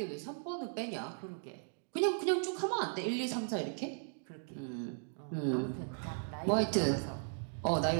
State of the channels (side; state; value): left; silent; digital silence